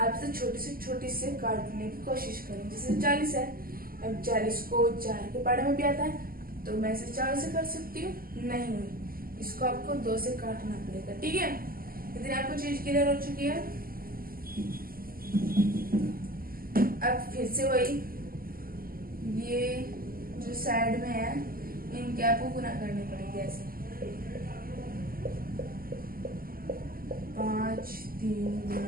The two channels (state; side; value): late; left; 0.42 ms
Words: छोटी से छोटी से काटने की कोशिश करें। जैसे 40 है, अब 40 को 4 के पहाड़े में भी आता है तो मैं इसे 4 से कर सकती हूँ, नहीं, इसको आपको 2 से काटना पड़ेगा। ठीक है, इतनी आपको चीज क्लियर हो चुकी है। अब फिर से वही, ये जो साइड में है इनके आपको गुना करने पड़ेंगे ऐसे। 5 3